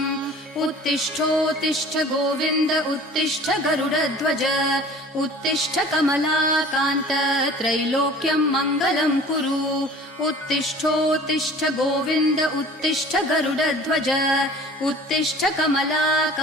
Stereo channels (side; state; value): both; normal; correlation 0.45